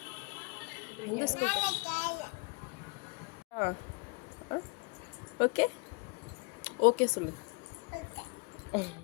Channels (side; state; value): right; quieter; 30.4 dB